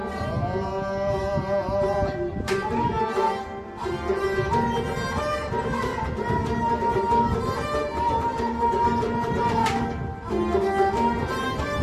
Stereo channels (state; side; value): identical; both; correlation 1.00